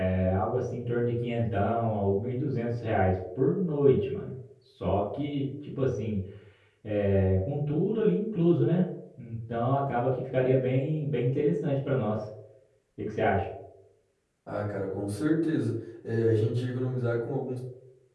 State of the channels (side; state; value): both; identical; correlation 1.00